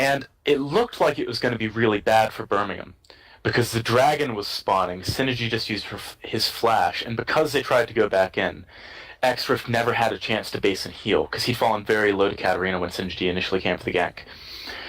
it looked like it was going to be really bad for Birmingham, because the Dragon was spawning, Synergy just used his flash, and because they tried to go back in, X-Rift never had a chance to base and heal, because he'd fallen very low to Katarina when Synergy initially came for the gank.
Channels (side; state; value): both; identical; correlation 1.00